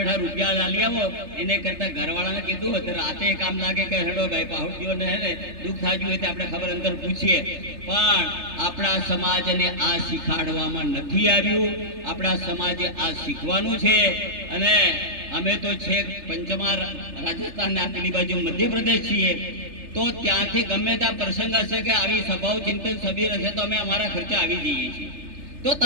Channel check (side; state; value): left; late; 3.3 ms